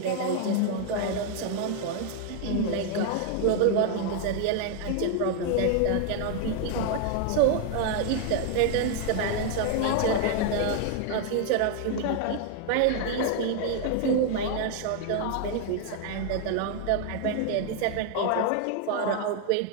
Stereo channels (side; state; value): both; different; correlation 0.00